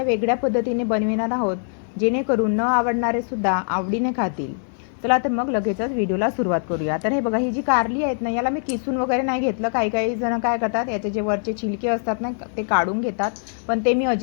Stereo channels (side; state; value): right; silent; digital silence